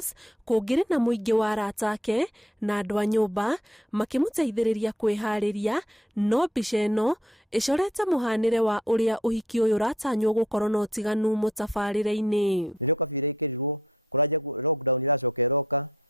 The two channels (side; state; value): both; normal; correlation 0.62